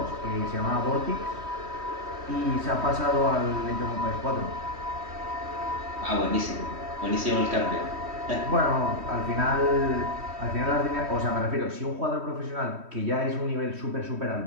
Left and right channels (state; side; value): late; left; 3.1 ms